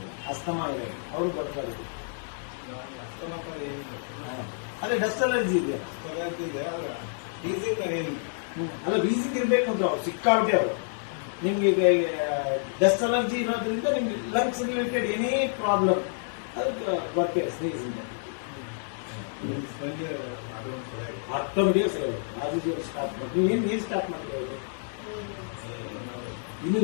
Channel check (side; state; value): right; silent; digital silence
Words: ಅಸ್ತಮಾ ಇದೆ ಅವ್ರು ಬರ್ತಾರೆ. ಅದೇ ಡಸ್ಟ್ ಅಲರ್ಜಿ ಇದೆ, ಅಲ್ಲ ವೀಸಿಂಗ್ ಇರ್ಬೇಕು ಅಂದ್ರೆ ಅವ್ರು ಸಿಕ್ಕಾಬಿಟ್ಟೆ ಅವರು. ನಿಮ್ಗೆ ಈಗ ಡಸ್ಟ್ ಅಲರ್ಜಿ ಇರೋದ್ರಿಂದ ನಿಮ್ಗೆ ಲಂಗ್ಸ್ ರಿಲೇಟೆಡ್ ಏನೇ ಪ್ರಾಬ್ಲಮ್ ಅದಕ್ಕೆ ಬರ್ತೀರ ಸ್ನೇಹಿತರಿಂದ ಆಟೋಮೆಟಿಕ್ ಸರಿ ಆಗುತ್ತೆ. ಸ್ಟಾರ್ಟ್ ಮಾಡಿ ನೀವು ಏನು ಸ್ಟಾರ್ಟ್ ಮಾಡಿದ್ರೆ ಇನ್ನು